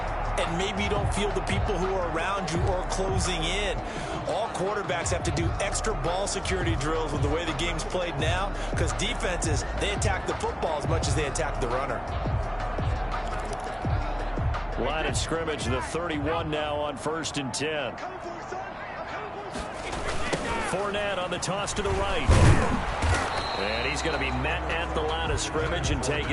and maybe you don't feel the people who are around you or closing in. All quarterbacks have to do extra ball security drills with the way the game's played now, because defenses, they attack the football as much as they attack the runner. Line of scrimmage, the 31 now on 1st and 10. Fournette on the toss to the right. And he's going to be met at the line of scrimmage and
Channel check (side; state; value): both; identical; correlation 1.00